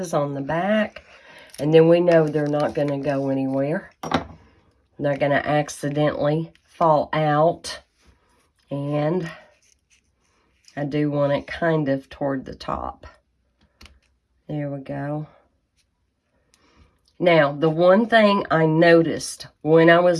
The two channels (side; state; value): both; identical; correlation 1.00